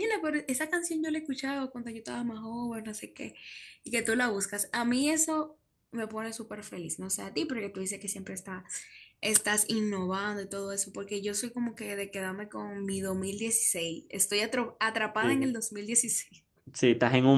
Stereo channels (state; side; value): identical; both; correlation 1.00